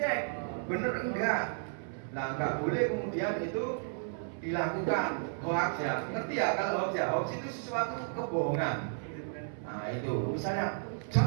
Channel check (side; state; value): left; silent; 56 dB below the other